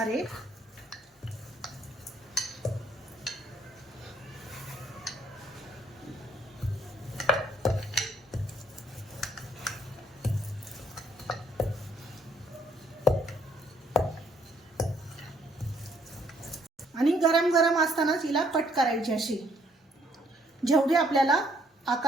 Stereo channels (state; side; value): normal; both; correlation 0.67